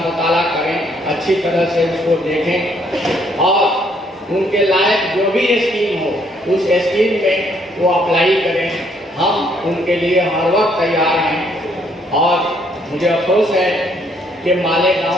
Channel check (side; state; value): both; normal; correlation 0.68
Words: करें, अच्छी तरह से उसको देखें और उनके लायक जो भी स्कीम हो उस स्कीम में वो अप्लाई करें। हम उनके लिए हर वक्त तैयार हैं। और मुझे अफसोस है कि